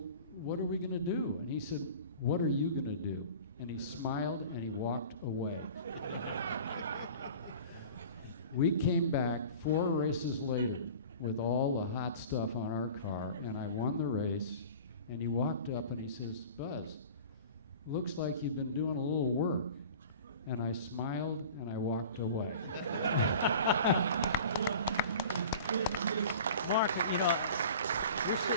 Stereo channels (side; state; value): both; inverted; correlation -0.41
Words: what are we gonna do? And he said, what are you gonna do? And he smiled and he walked away. We came back 4 races later with all the hot stuff on our car, and I won the race. And he walked up and he says, Buzz, looks like you've been doing a little work. And I smiled and I walked away. Mark, you know, you're